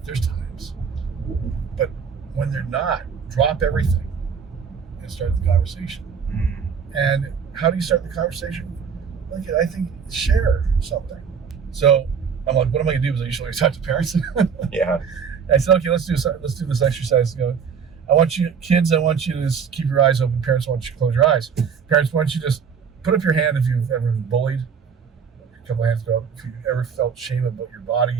There's times. But when they're not, drop everything and start the conversation. And how do you start the conversation? Like, I think share something. So I'm like, what am I gonna do? Because I usually talk to parents. Yeah. I said, okay, let's do this exercise. I want you to just keep your eyes open. Parents, I want you to close your eyes. Parents, I want you to just put up your hand if you've ever been bullied. A couple of hands go up. If you ever felt shame about your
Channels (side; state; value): left; quieter; 6.7 dB